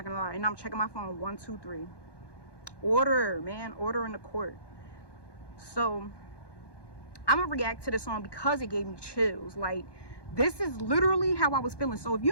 gonna lie. And I'm checking my phone. 1, 2, 3. Order, man, order in the court. So I'm gonna react to this song because it gave me chills. Like, this is literally how I was feeling. So if you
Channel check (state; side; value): late; right; 1.2 ms